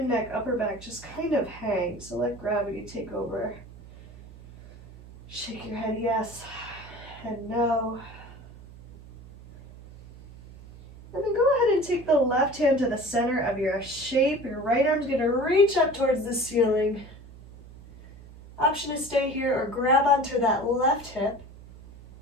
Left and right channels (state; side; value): noise; right; hum, 19 dB below the sound